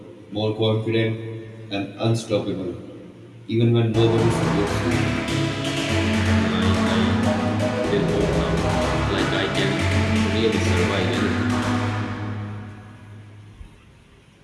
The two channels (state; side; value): identical; both; correlation 1.00